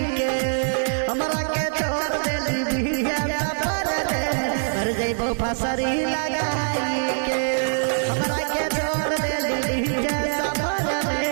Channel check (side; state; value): left; silent; digital silence